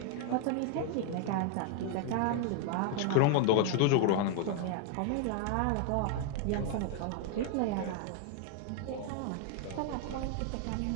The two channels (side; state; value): both; different; correlation 0.00